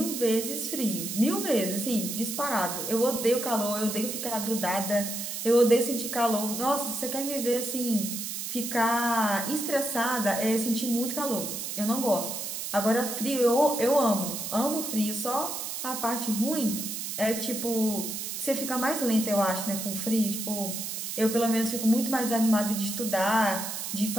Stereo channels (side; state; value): right; noise; hiss, 5 dB below the sound